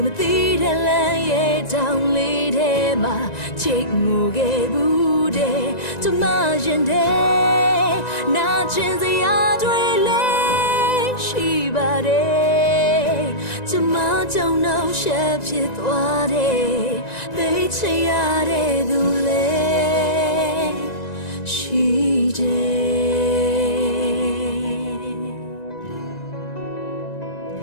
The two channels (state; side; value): late; right; 1.9 ms